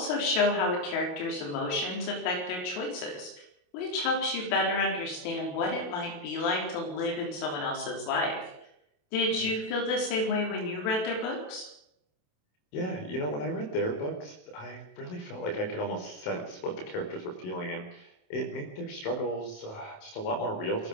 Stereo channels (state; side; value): late; right; 28 ms